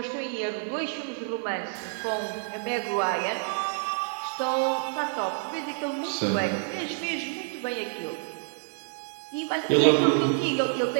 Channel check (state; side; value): silent; left; 59 dB below the other